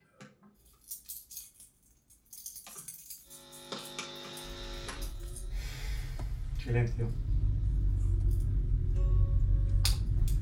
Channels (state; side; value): identical; both; correlation 1.00